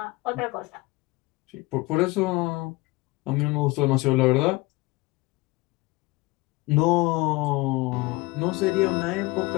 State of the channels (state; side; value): quieter; right; 22.7 dB